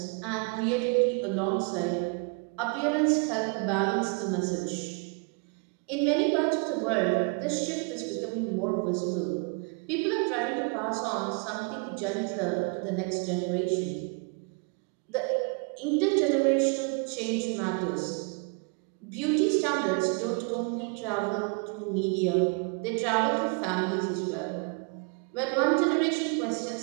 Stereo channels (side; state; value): left; quieter; 35.7 dB